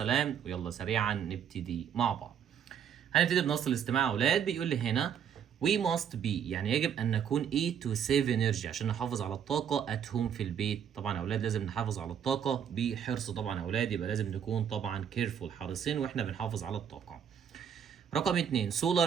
ويلا سريعا نبتدي مع بعض. هنبتدي بنص الاستماع يا أولاد. بيقول لي هنا we must be يعني يجب أن نكون to save energy عشان نحافظ على الطاقة at home في البيت. طبعا يا أولاد لازم نحافظ على الطاقة بحرص. طبعا يا أولاد يبقى لازم نكون طبعا careful حريصين وإحنا بنحافظ على الطاقة. رقم 2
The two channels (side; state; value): left; quieter; 8.3 dB